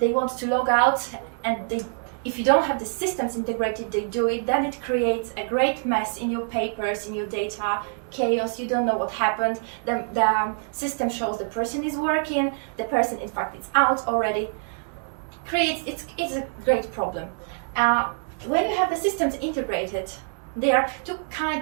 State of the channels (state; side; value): silent; left; 60 dB below the other